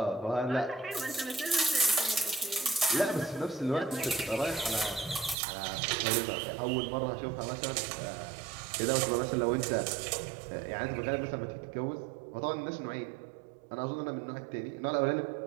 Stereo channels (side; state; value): left; drops out; at 5.4 s